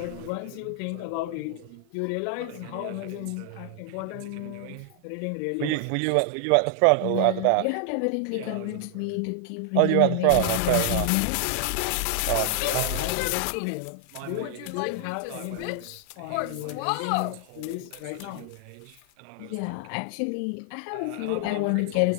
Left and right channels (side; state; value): both; different; correlation 0.00